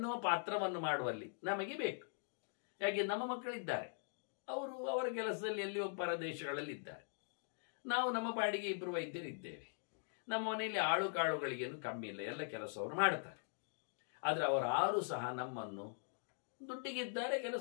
ಪಾತ್ರವನ್ನು ಮಾಡುವಲ್ಲಿ ನಮಗೆ ಬೇಕು. ಯಾಕೆ, ನಮ್ಮ ಮಕ್ಕಳಿದ್ದಾರೆ, ಅವರು ಅವರ ಕೆಲಸದಲ್ಲಿ ಎಲ್ಲಿಯೋ ಪರದೇಶಗಳಲ್ಲಿ ಇದ್ದಾರೆ, ನಾವು ನಮ್ಮ ಪಾಡಿಗೆ 2 ವೈದ್ಯರಿದ್ದೇವೆ. ನಮ್ಮ ಮನೆಯಲ್ಲಿ ಆಳು ಕಾಳುಗಳಿಗೇನು ಕಮ್ಮಿ ಇಲ್ಲ, ಎಲ್ಲ ಕೆಲಸವರು ಮಾಡ್ತಾರೆ. ಆದರೆ ಅವರಾರು ಸಹ ನಮ್ಮನ್ನು ದುಡ್ಡಿಗಿದ್ದಾರೆ,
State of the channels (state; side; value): silent; right; digital silence